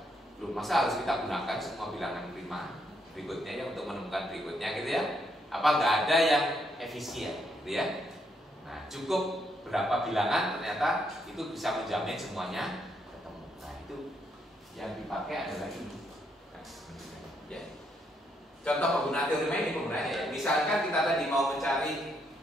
loh masa harus kita gunakan semua bilangan prima berikutnya ya untuk menemukan berikutnya gitu ya? Apa nggak ada yang efisien gitu ya? Nah, cukup berapa bilangan ternyata itu bisa menjamin semuanya ketemu. Nah, itu yang dipakai adalah ini. Ya. Contoh penggunaan teori ini penggunaannya ya. Misalkan kita tadi mau mencari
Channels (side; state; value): both; normal; correlation 0.75